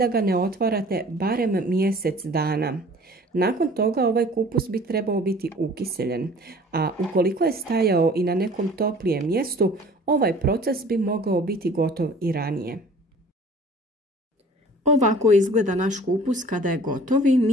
ga ne otvarate barem mjesec dana. Nakon toga ovaj kupus bi trebao biti ukiseljen, a ukoliko je stajao i na nekom toplijem mjestu, ovaj proces bi mogao biti gotov i ranije. Ovako izgleda naš kupus kada je gotov i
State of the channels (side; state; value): both; normal; correlation 0.48